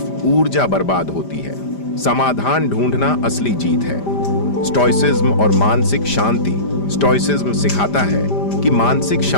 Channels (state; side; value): late; right; 5.0 ms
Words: ऊर्जा बर्बाद होती है। समाधान ढूंढना असली जीत है। स्टोइसिज्म और मानसिक शांति। स्टोइसिज्म सिखाता है कि मानसिक